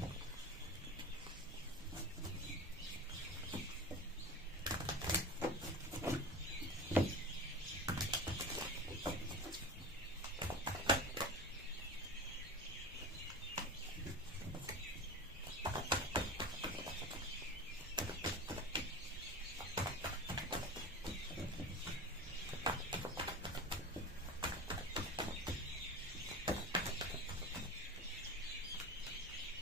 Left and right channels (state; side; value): normal; both; correlation 0.30